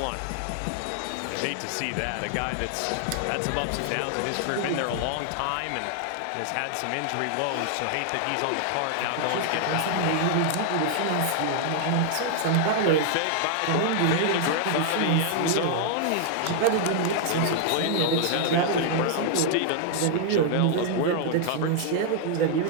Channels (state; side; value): different; both; correlation 0.00